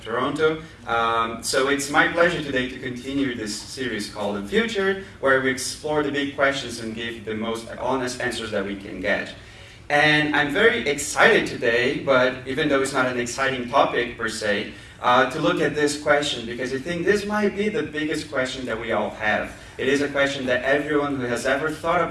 Toronto. So it's my pleasure today to continue this series called Unfiltered, where we explore the big questions and give the most honest answers that we can get. And I'm very excited today, but even though it's not an exciting topic per se, to look at this question, because I think this might be the biggest question that we all have. It is a question that everyone who has ever thought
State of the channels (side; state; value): both; identical; correlation 1.00